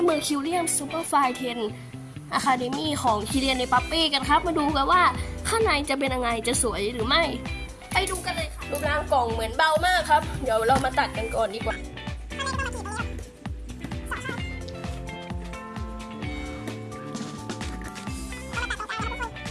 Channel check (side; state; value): both; identical; correlation 1.00